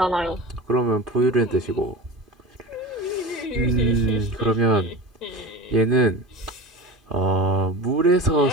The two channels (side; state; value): both; normal; correlation 0.32